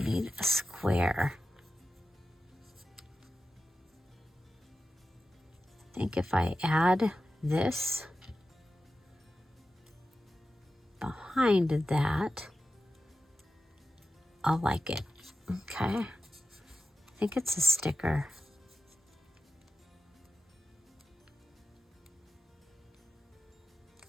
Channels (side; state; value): both; normal; correlation 0.93